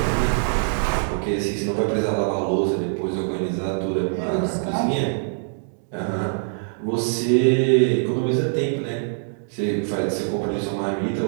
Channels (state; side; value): silent; left; digital silence